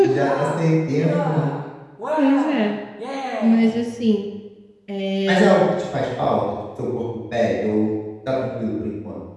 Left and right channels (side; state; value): both; identical; correlation 1.00